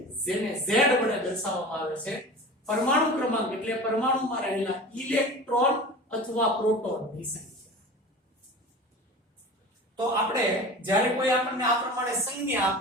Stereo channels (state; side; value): normal; both; correlation 0.35